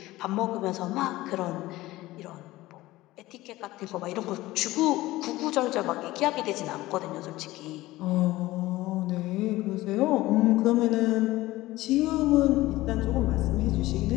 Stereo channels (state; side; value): quieter; right; 17.8 dB